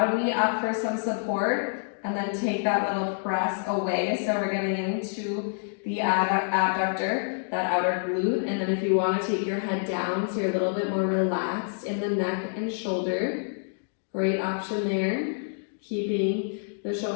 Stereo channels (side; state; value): right; silent; digital silence